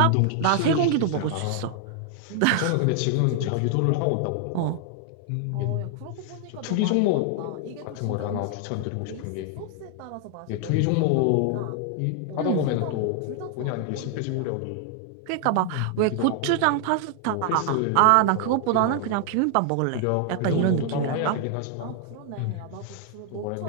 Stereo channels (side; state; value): both; different; correlation 0.00